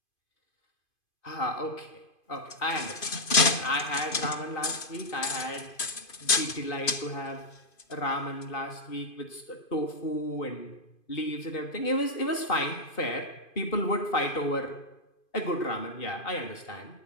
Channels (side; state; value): right; late; 2.5 ms